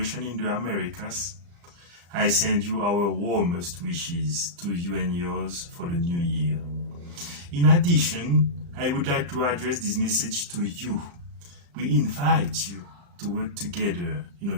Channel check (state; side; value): late; left; 35 ms